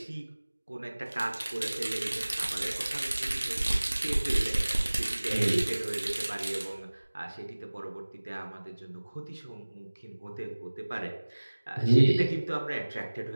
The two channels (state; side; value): inverted; both; correlation -1.00